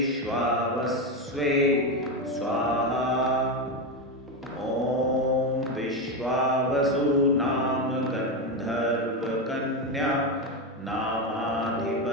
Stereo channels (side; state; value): both; normal; correlation 0.12